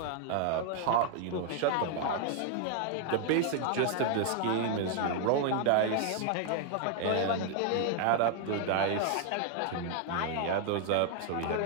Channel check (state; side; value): different; both; correlation 0.00